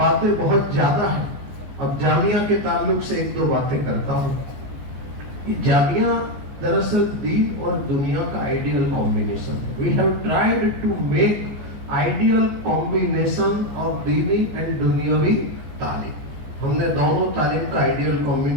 بہت زیادہ ہیں. اب جامعہ کے تعلق سے 1-2 باتیں کرتا ہوں. یہ جامعہ دراصل دین اور دنیا کا آئیڈیل کمبینیشن ہے. We have tried to make ideal combination of دینی اینڈ دنیاوی تعلیم. ہم نے دونوں تعلیم کا آئیڈیل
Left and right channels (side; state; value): left; late; 14 ms